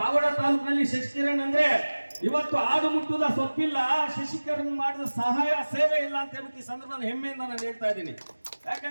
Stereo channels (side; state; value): both; inverted; correlation -1.00